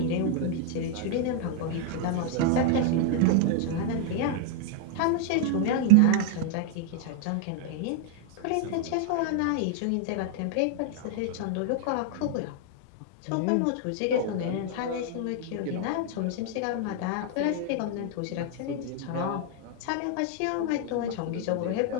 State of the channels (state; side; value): different; both; correlation 0.00